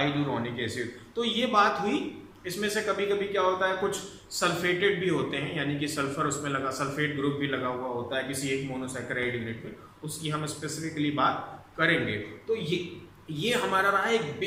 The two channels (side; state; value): both; identical; correlation 1.00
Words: acid. तो ये बात हुई। इसमें से कभी कभी क्या होता है, कुछ सल्फेटेड भी होते हैं, यानी कि सल्फर उसमें लगा, सल्फेट ग्रुप भी लगा हुआ होता है किसी एक मोनोसैकेराइड यूनिट में, उसकी हम स्पेसिफिकली बात करेंगे। तो ये हमारा रहा एक